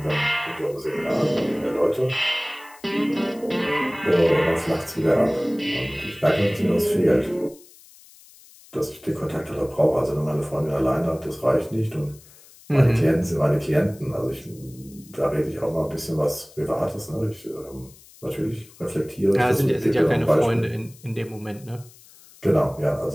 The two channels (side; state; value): left; noise; hiss, 24 dB below the sound